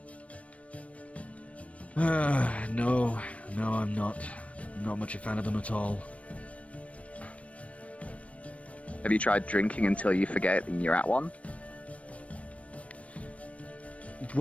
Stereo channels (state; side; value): late; right; 0.064 ms